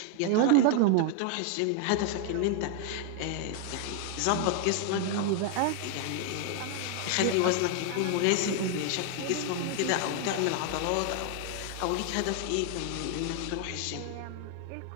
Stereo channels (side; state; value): both; different; correlation 0.00